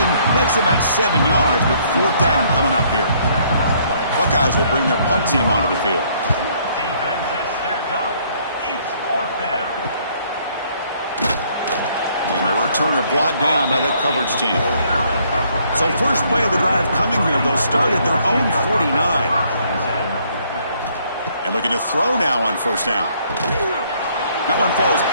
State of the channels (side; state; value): both; inverted; correlation -0.65